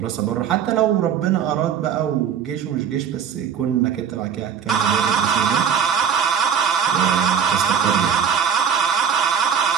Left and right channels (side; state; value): left; quieter; 7.7 dB